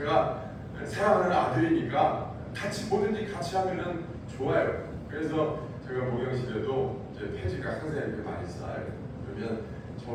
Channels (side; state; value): both; identical; correlation 1.00